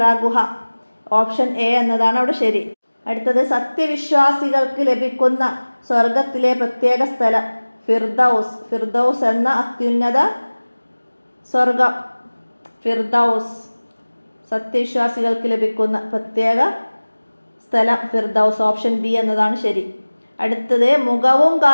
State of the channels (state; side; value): inverted; both; correlation -1.00